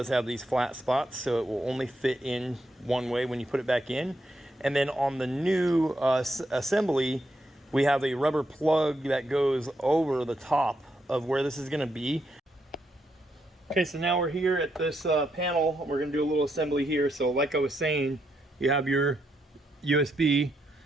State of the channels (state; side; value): normal; both; correlation 0.80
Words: have these flat spots, so it will only fit in one way when you put it back in. And then on the new assembly, we have a rubber plug that goes over the top of where this is going to be. Okay, so now we're here at this panel. We're going to do a little assembly here. So like I was saying, you have your USB,